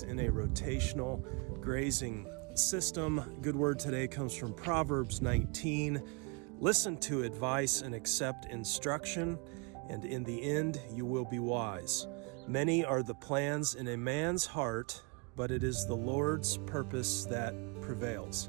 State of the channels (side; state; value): left; quieter; 32.0 dB